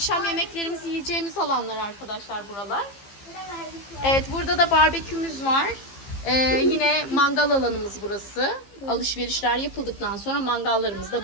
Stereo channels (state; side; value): late; right; 15 ms